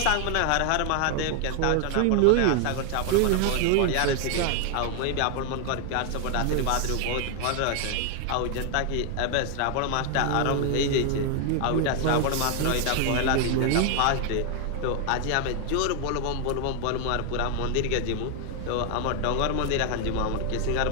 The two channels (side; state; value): both; different; correlation 0.00